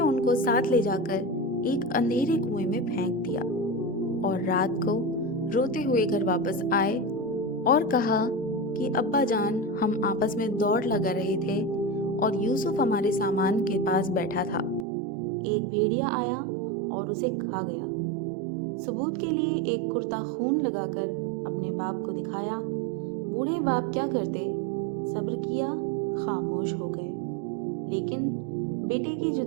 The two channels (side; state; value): left; drops out; at 14.9 s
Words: उनको साथ ले जाकर एक अंधेरे कुएं में फेंक दिया और रात को रोते हुए घर वापस आए और कहा कि अब्बा जान, हम आपस में दौड़ लगा रहे थे और यूसुफ हमारे सामान के पास बैठा था। एक भेड़िया आया और उसे खा गया। सबूत के लिए एक कुर्ता खून लगाकर अपने बाप को दिखाया। बूढ़े बाप क्या करते, सब्र किया, खामोश हो गए, लेकिन बेटे की